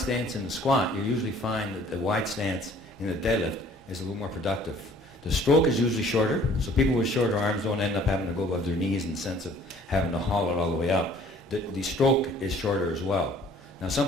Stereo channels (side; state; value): both; normal; correlation 0.55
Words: in the squat, you usually find that the wide stance in the deadlift is a little more productive. The stroke is usually shorter, so people with shorter arms don't end up having to go above their knees in the sense of having to haul it all the way up. The stroke is shorter as well. Now